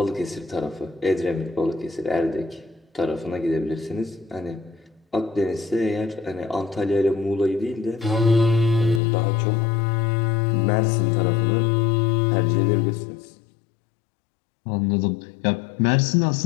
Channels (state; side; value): drops out; right; at 9.0 s